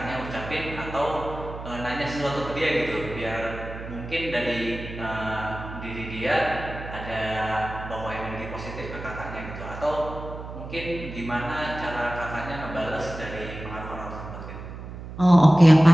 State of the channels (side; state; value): right; noise; hum, 11 dB below the sound